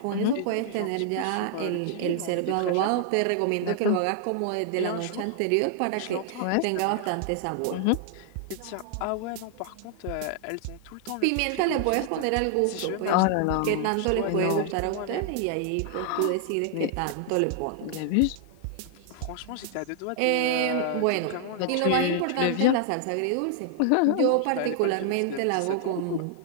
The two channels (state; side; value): different; both; correlation 0.00